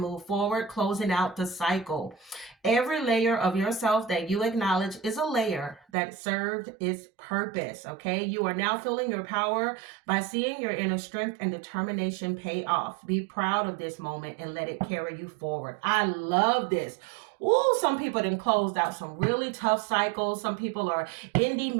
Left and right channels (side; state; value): left; drops out; at 5.8 s